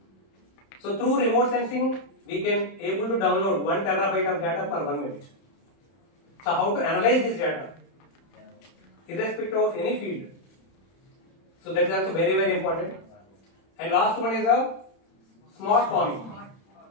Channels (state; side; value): late; right; 31 ms